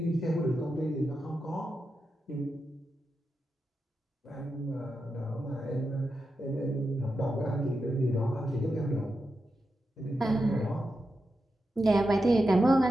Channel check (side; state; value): both; normal; correlation 0.88